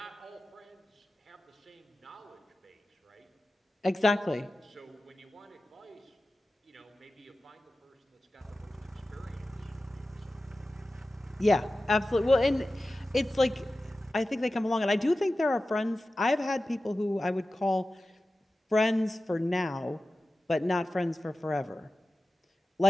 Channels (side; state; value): both; normal; correlation 0.95